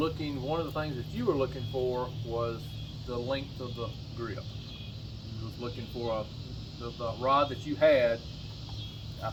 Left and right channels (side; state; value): both; identical; correlation 1.00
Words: one of the things that you were looking for was the length of the grip. You was looking for the rod that you had. I